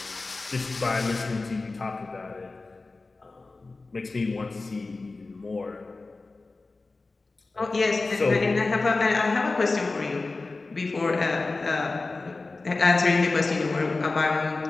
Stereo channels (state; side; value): quieter; right; 3.6 dB